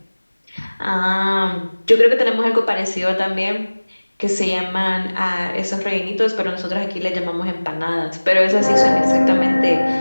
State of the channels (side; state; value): both; inverted; correlation -1.00